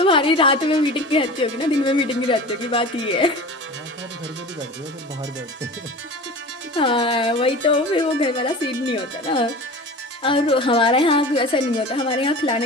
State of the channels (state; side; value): normal; both; correlation 0.35